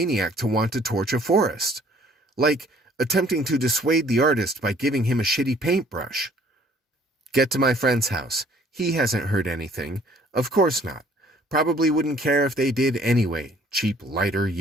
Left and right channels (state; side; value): normal; both; correlation 0.57